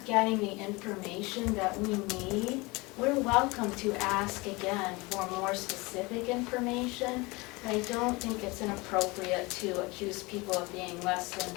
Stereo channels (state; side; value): quieter; right; 24.4 dB